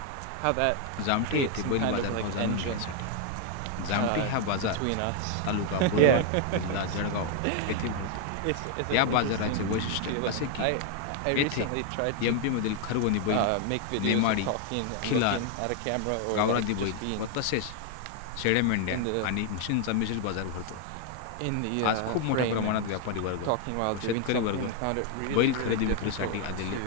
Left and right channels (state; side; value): different; both; correlation 0.00